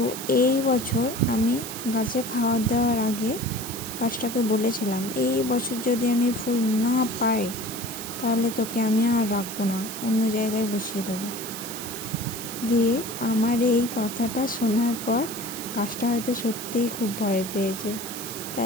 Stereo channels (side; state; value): right; noise; hiss, 8 dB below the sound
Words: এই বছর আমি গাছে খাবার দেওয়ার আগে গাছটাকে বলেছিলাম, এই বছর যদি আমি ফুল না পাই তাহলে তোকে আমি আর রাখবো না, অন্য জায়গায় বসিয়ে দেবো। দিয়ে আমার এই কথাটা শোনার পর গাছটা হয়তো সত্যিই খুব ভয় পেয়েছে,